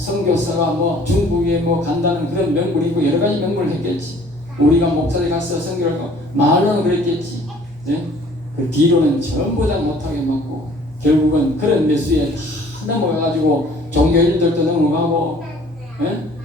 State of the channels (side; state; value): both; normal; correlation 0.54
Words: 뭐 중국에 뭐 간다는 그런 명분이 있고 여러 가지 명분을 했겠지. 우리가 목사들 가서 선교를 하고 말로는 그랬겠지. 그 뒤로는 전부 다 못하게 먹고 결국은 그런 매수에 다 넘어가가지고 종교인들도 넘어가고